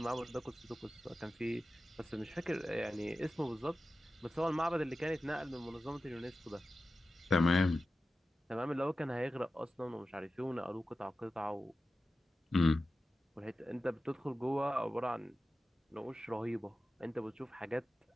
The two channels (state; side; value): normal; both; correlation 0.94